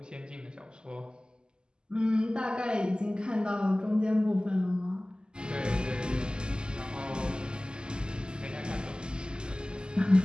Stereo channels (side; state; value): left; late; 0.047 ms